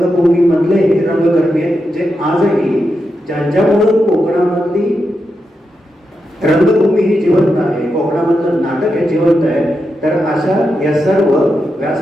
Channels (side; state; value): both; normal; correlation 0.86